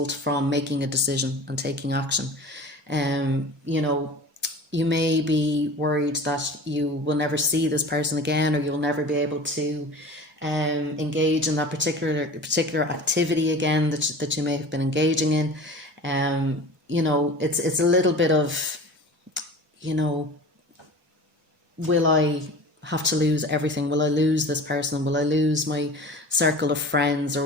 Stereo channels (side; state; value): both; normal; correlation 0.38